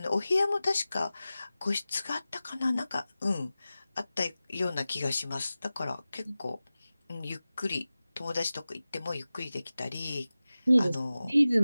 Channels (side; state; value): both; inverted; correlation -0.96